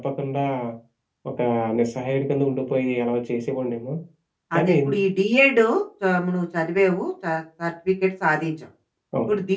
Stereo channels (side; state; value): both; identical; correlation 1.00